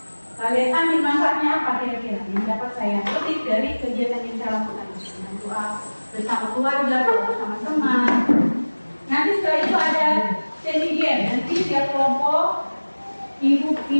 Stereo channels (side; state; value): both; inverted; correlation -1.00